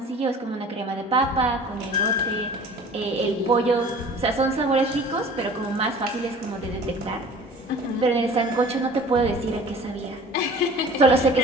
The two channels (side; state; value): both; normal; correlation 0.45